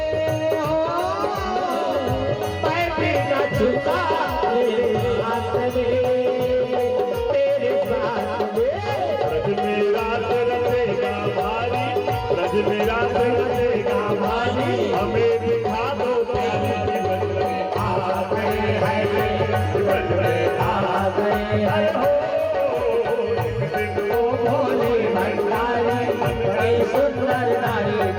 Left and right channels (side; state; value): both; identical; correlation 1.00